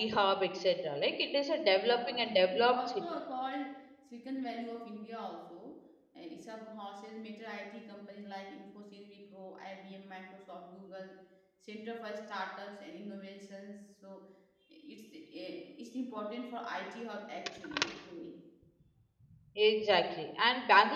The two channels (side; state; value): both; identical; correlation 1.00